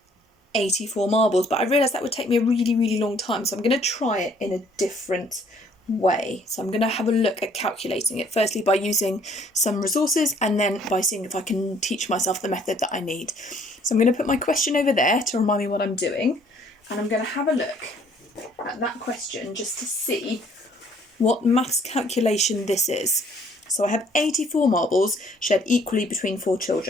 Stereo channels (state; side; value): normal; both; correlation 0.61